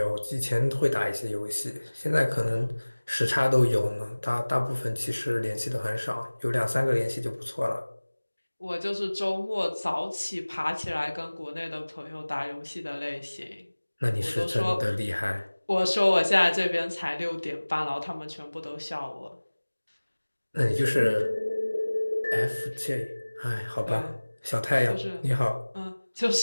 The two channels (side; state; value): both; inverted; correlation -1.00